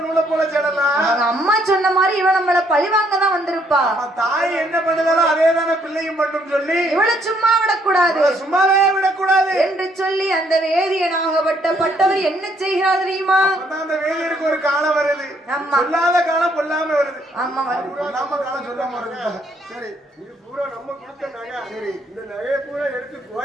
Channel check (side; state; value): both; normal; correlation 0.69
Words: நூலை போல செல்லலாம். அவங்க அம்மா சொன்ன மாதிரி இவன் நம்மள பழிவாங்க தான் வந்திருப்பா. தாய் என்ன பண்ணுதாலும் அதே தானே பிள்ளையும் மட்டும் சொல்லி இவளை சும்மா விடக்கூடாது, சும்மாவே விடக்கூடாது என்று சொல்லி அந்த வேதியனாகப்பட்டவர் என்ன செய்கிறார் தெரியுமா? அந்த வேதியருக்கு ஒரு காலம் வருது. சொல்லாத காலம் பொல்லாம வருது. ஆமா, பொல்லாம காலம் சொல்லாம வருது. சரி, இது பூரா நம்ம கொடுத்த நகை. சரி, இந்த நகையை பூரா எடுத்து